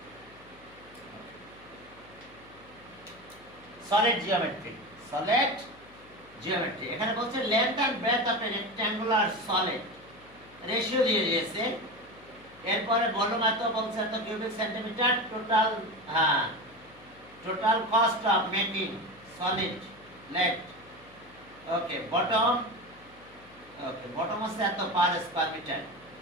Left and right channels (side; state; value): left; noise; hum, 24 dB below the sound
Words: Solid geometry, solid geometry. এখানে বলছে length and breadth of a rectangular solid, ratio দিয়ে দিয়েছে। এরপরে ভলিউম এত বলছে এত cubic centimetre, total total cost of making solid let. Okay, bottom হচ্ছে এত পার স্কয়ার মিটার।